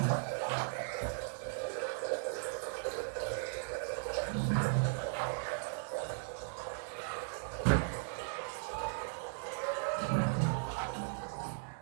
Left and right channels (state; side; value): silent; left; 53 dB below the other